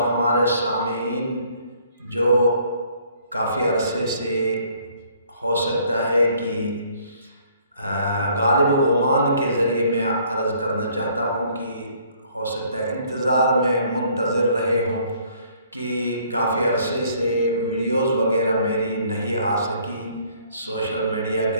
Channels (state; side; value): inverted; both; correlation -0.61